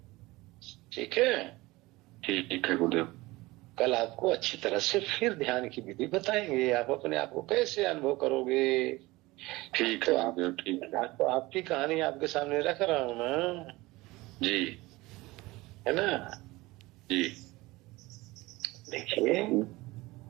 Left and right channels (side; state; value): left; quieter; 20.7 dB